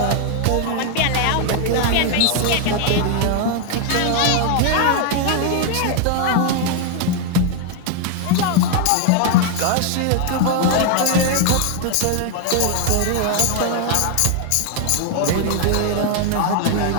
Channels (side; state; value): both; different; correlation 0.00